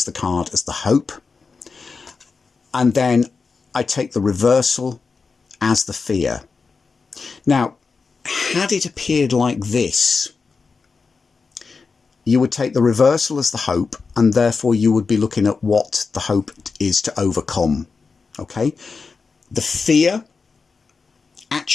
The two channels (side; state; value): right; quieter; 4.7 dB